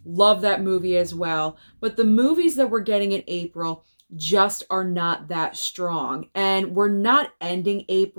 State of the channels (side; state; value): both; inverted; correlation -1.00